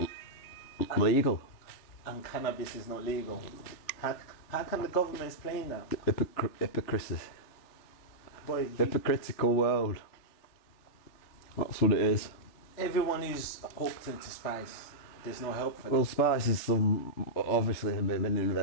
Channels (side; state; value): right; late; 3.4 ms